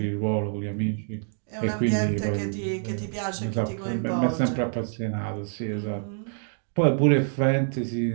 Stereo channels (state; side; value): silent; left; digital silence